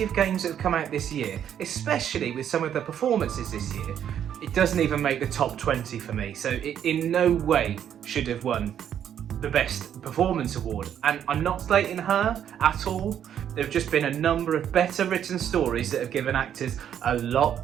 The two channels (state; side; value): quieter; left; 9.5 dB